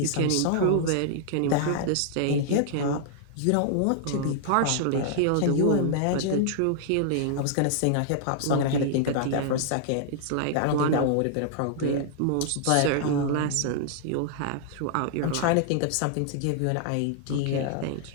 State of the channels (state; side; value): different; both; correlation -0.01